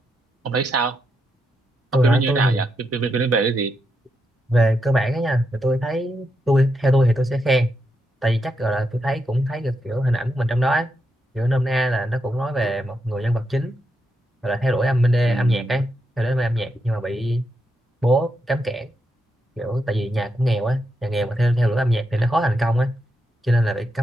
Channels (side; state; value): both; normal; correlation 0.83